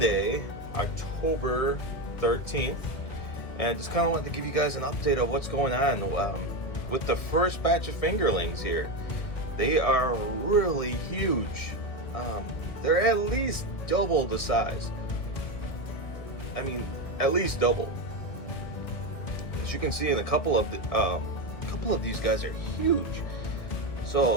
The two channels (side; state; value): right; late; 2.0 ms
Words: October 13th, and I just kind of wanted to give you guys an update of what's going on with the first batch of fingerlings here. They are really huge. They're at least double the size. I mean, at least double. As you can see, in a couple of these guys are huge.